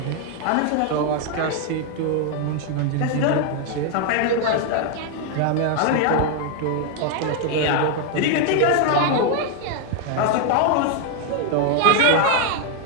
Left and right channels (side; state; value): both; different; correlation 0.00